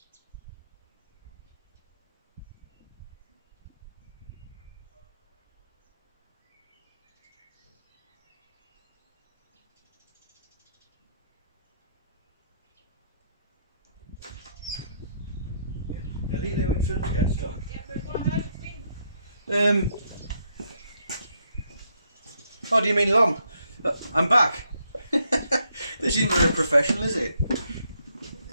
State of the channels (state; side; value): inverted; both; correlation -0.74